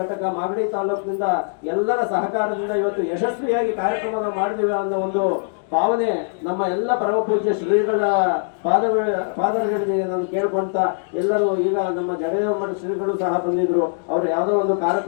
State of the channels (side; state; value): right; silent; digital silence